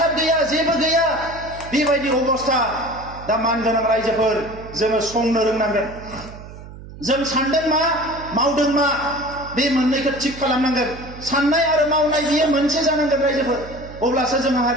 गैया जेबो गैया बेबायदि अबस्था दा मानगोनां रायजोफोर जोङो संनो रोंनांगोन जों सानदों मा मावदों मा बे मोननैखौ थिक खालामनांगोन साननाय आरो मावनाय बियो मोनसे जानांगोन रायजोफोर अब्लासो जोंहा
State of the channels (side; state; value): right; noise; hum, 15 dB below the sound